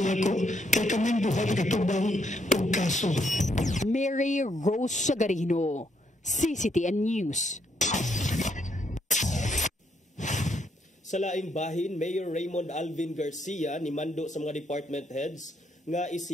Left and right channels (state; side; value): normal; both; correlation 0.73